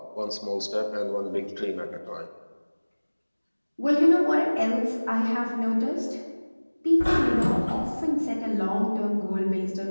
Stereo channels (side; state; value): both; inverted; correlation -1.00